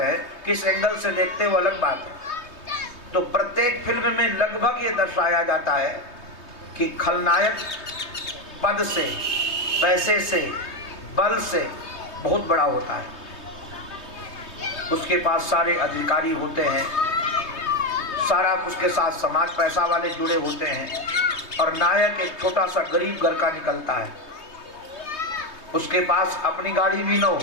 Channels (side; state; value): right; late; 3.2 ms